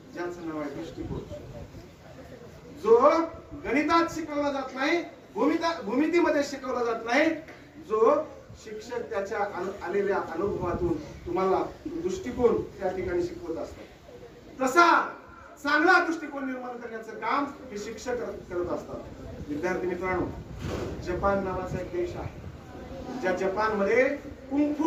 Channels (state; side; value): identical; both; correlation 1.00